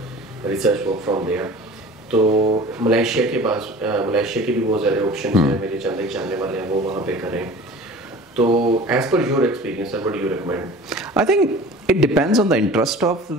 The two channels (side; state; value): both; normal; correlation 0.42